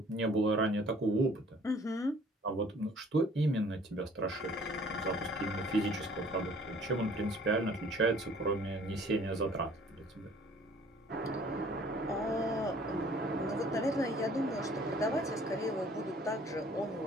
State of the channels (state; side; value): normal; both; correlation 0.55